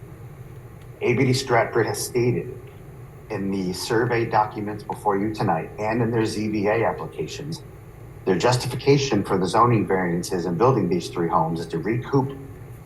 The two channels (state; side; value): identical; both; correlation 1.00